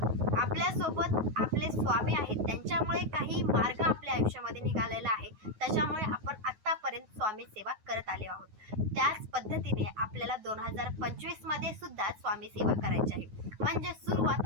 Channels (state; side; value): late; left; 9.4 ms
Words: आपल्यासोबत आपले स्वामी आहेत, त्यांच्यामुळे काही मार्ग आपल्या आयुष्यामध्ये निघालेला आहे, त्याच्यामुळे आपण आतापर्यंत स्वामी सेवा करत आले आहोत। त्याच पद्धतीने आपल्याला 2025 मध्ये सुद्धा स्वामी सेवा करायची आहे, म्हणजे सुरुवात